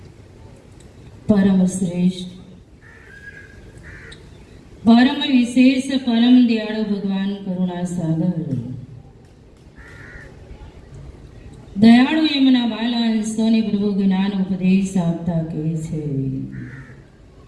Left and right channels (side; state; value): both; identical; correlation 1.00